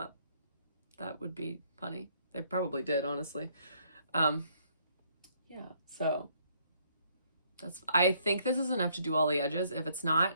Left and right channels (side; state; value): both; inverted; correlation -0.67